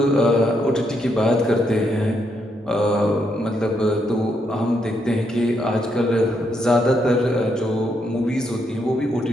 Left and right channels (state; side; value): normal; both; correlation 0.77